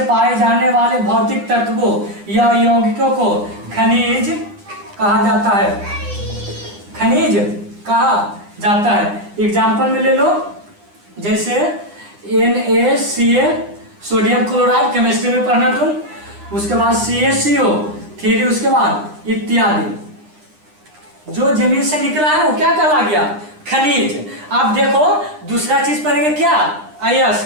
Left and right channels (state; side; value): late; left; 9.9 ms